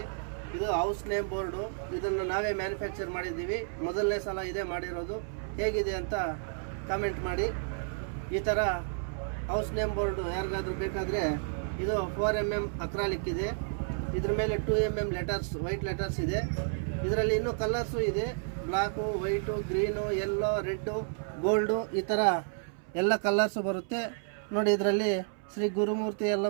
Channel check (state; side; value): silent; left; 57 dB below the other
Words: ಇದು ಹೌಸ್ ನೇಮ್ ಬೋರ್ಡು. ಇದನ್ನು ನಾವೇ ಮ್ಯಾನುಫ್ಯಾಕ್ಚರ್ ಮಾಡಿದ್ದೀವಿ. ಮೊದಲನೇ ಸಲ ಇದೇ ಮಾಡಿರೋದು. ಹೇಗಿದೆ ಅಂತ ಕಾಮೆಂಟ್ ಮಾಡಿ. ಈ ಥರ ಹೌಸ್ ನೇಮ್ ಬೋರ್ಡು ಯಾರಿಗಾದ್ರೂ ಬೇಕಾದರೆ ಇದು 4mm ಅಕ್ರಾಲಿಕ್ ಇದೆ. ಇದ್ರ ಮೇಲೆ 2mm ಲೆಟರ್ಸ್, ವೈಟ್ ಲೆಟರ್ಸ್ ಇದೆ. ಇದರಲ್ಲಿ ಇನ್ನೂ ಕಲರ್ಸು ಇದೆ. Block, white, green, yellow, red, gold, ಈ ಥರ ಎಲ್ಲ ಕಲರ್ಸು ಬರುತ್ತೆ ನೋಡಿ. ಇದರಲ್ಲಿ ಶ್ರೀ ಗುರುಮೂರ್ತಿ